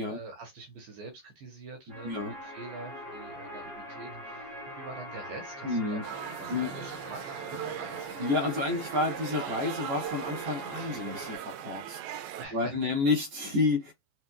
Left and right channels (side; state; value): left; late; 14 ms